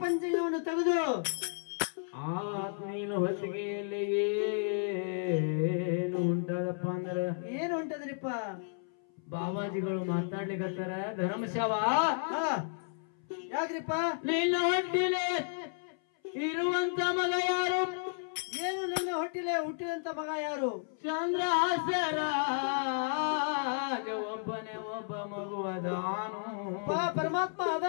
ಪಂಚಂಗವನ್ನು ತೆಗೆದು ಆ ನೀನು ಹೊತ್ತಿಗೆಯಲ್ಲಿ ಏನು ಉಂಟದಪ್ಪ ಅಂದ್ರ ಏನು ಉಂಟದ್ರಿಪ್ಪ ಬಾಬಾಜಿಗಳು ಮಾತಾಡ್ಲಿಕತ್ತಾರ. ಧರ್ಮಶಾವ ಯಾಕ್ರಿಪ್ಪ ನಿನ್ನ ಹೊಟ್ಟಿಲೆ ಇರುವಂತ ಮಗ ಯಾರು? ಏನು ನನ್ನ ಹೊಟ್ಟಿಲೆ ಹುಟ್ಟಿದಂತ ಮಗ ಯಾರು? ಚಂದ್ರಹಾಸರ ಒಬ್ಬನೇ ಒಬ್ಬ ಮಗು ಅದಾನು. ಪರಮಾತ್ಮ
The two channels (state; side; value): silent; right; 56 dB below the other